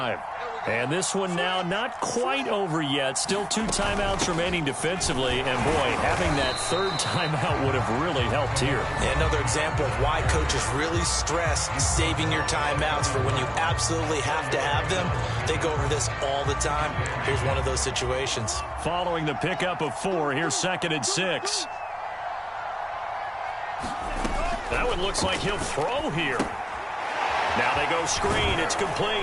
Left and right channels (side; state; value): both; identical; correlation 1.00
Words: And this one now not quite over yet. Still 2 timeouts remaining defensively. And, boy, having that 3rd timeout would have really helped here. Yeah, another example of why coaches really stress saving your timeouts for when you absolutely have to have them. They go over this all the time. Here's one of those situations. Following the pickup of 4, here's 2nd and 6. That one looks like he'll throw here. Now they go screen. It's